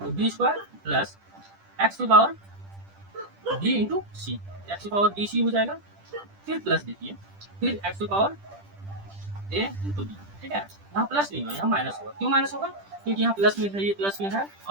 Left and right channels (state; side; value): late; left; 10 ms